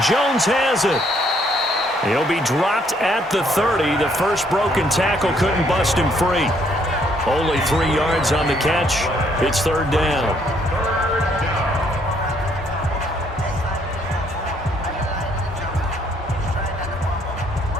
Jones has it. He'll be dropped at the 30. The first broken tackle couldn't bust him free. Only 3 yards on the catch. It's 3rd down.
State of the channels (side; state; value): both; normal; correlation 0.68